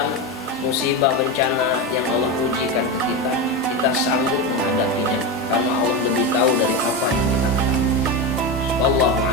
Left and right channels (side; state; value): both; normal; correlation 0.16